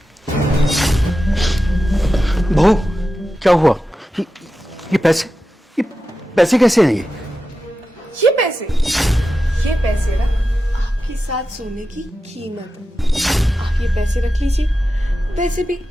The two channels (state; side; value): normal; both; correlation 0.91